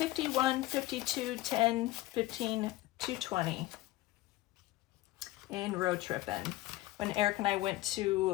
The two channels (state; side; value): quieter; right; 17.4 dB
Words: 52, 10, 15, 220 in road tripping. When Eric and I went